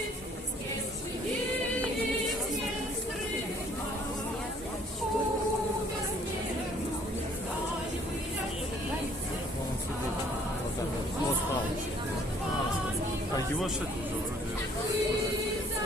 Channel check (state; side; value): normal; both; correlation 0.59